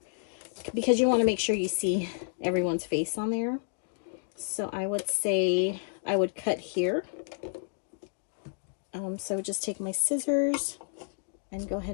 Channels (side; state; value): right; silent; 58 dB below the other